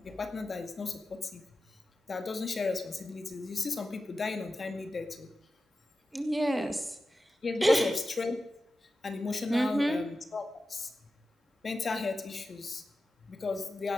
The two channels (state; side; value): normal; both; correlation 0.93